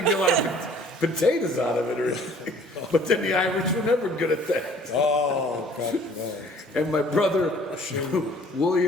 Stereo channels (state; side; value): normal; both; correlation 0.54